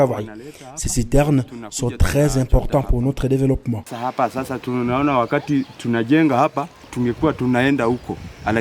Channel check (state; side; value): identical; both; correlation 1.00